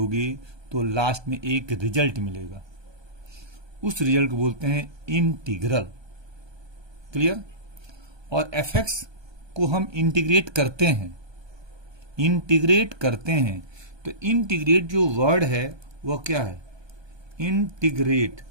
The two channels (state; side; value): late; left; 1.2 ms